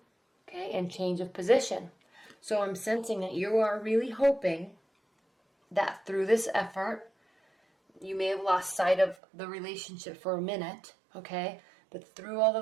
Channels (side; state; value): left; drops out; at 9.2 s